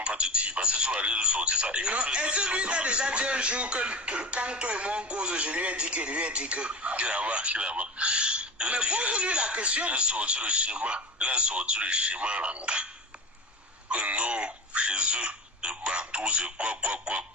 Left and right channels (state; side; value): normal; both; correlation 0.31